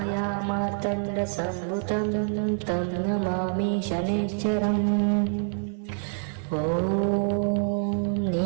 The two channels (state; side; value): silent; left; 61 dB below the other